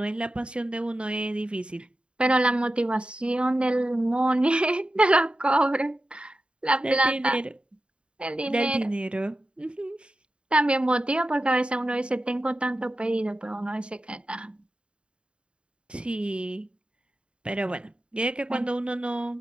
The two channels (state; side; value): late; left; 0.055 ms